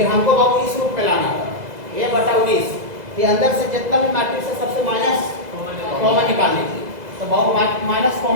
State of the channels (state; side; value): late; left; 2.0 ms